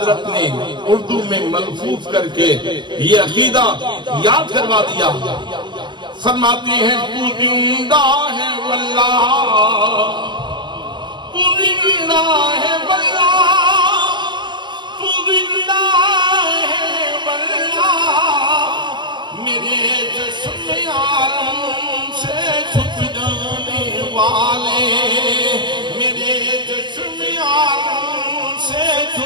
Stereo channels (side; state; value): left; late; 0.22 ms